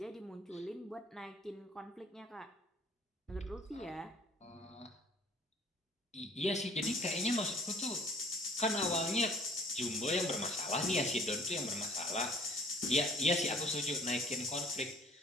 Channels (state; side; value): normal; both; correlation 0.54